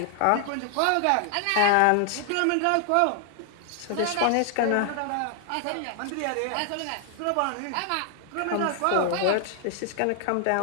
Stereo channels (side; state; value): both; different; correlation 0.00